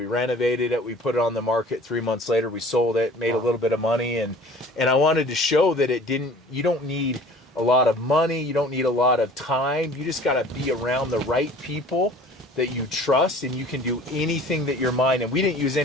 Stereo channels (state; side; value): normal; both; correlation 0.47